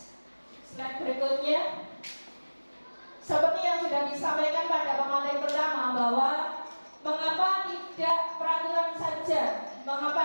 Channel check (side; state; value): both; inverted; correlation -1.00